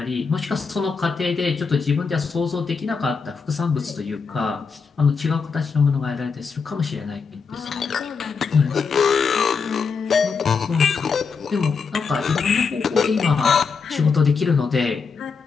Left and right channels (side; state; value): right; quieter; 5.3 dB